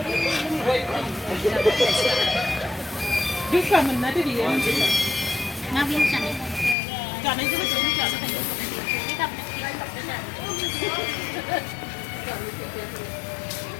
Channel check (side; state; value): right; drops out; at 6.8 s